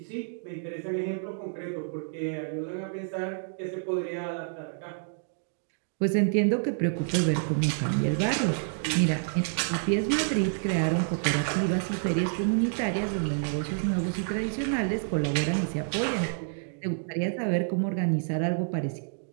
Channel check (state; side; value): silent; left; digital silence